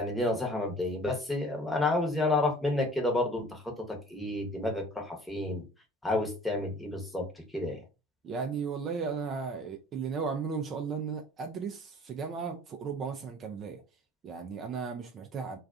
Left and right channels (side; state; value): both; normal; correlation 0.49